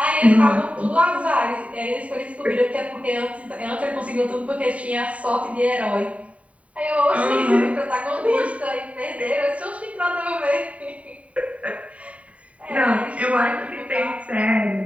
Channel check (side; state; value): left; late; 0.066 ms